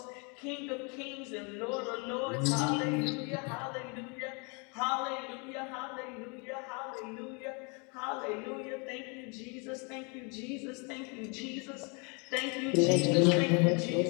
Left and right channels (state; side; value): quieter; right; 33.4 dB